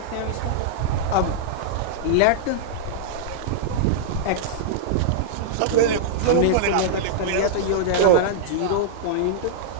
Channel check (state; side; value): different; both; correlation -0.02